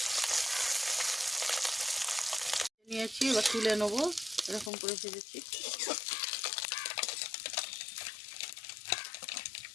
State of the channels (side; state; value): right; drops out; at 4.7 s